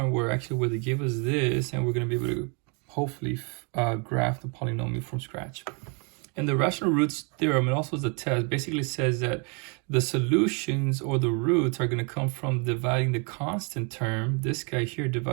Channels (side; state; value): left; quieter; 35.1 dB